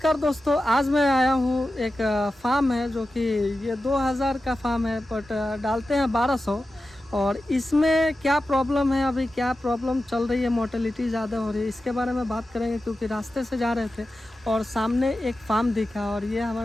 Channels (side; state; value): both; normal; correlation 0.92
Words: दोस्तों, आज मैं आया हूँ एक फार्म है जो कि ये 2000 का फार्म है बट डालते हैं 1200। और इसमें क्या प्रॉब्लम है, अभी क्या प्रॉब्लम चल रही है, मोर्टेलिटी ज़्यादा हो रही है, इसके बारे में बात करेंगे। क्योंकि रास्ते से जा रहे थे और सामने एक फार्म दिखा और ये